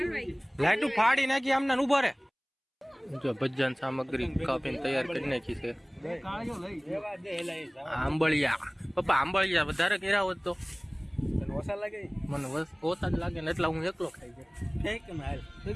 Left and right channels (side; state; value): both; identical; correlation 1.00